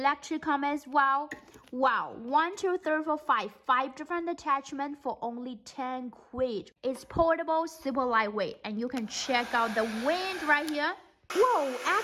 comb as well. Wow, 1 2 3 4 5 different attachments for only 10 quid. It's portable, super lightweight, and you can check out the wind right here. Whoa,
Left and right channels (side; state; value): both; identical; correlation 1.00